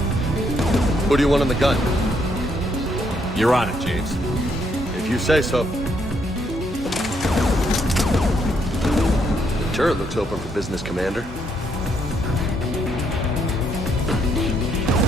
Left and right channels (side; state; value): both; normal; correlation 0.73